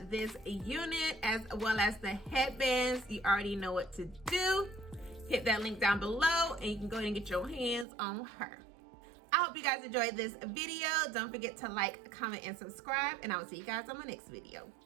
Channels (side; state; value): left; drops out; at 7.9 s